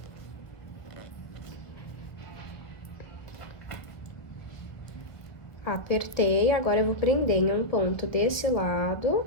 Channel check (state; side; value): late; right; 1.6 ms